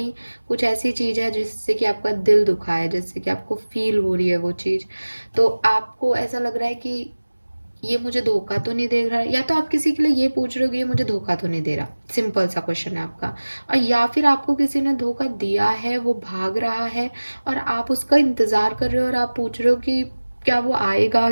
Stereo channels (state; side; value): inverted; both; correlation -1.00